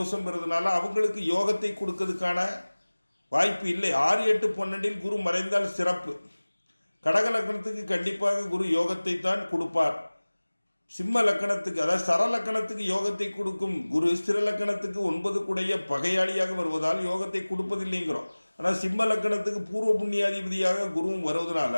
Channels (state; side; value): inverted; both; correlation -1.00